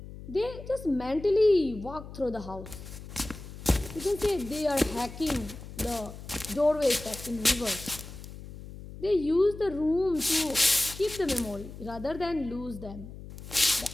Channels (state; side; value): noise; left; hum, 13 dB below the sound